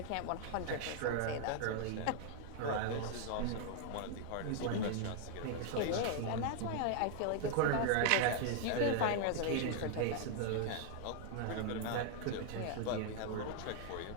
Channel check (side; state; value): both; different; correlation 0.00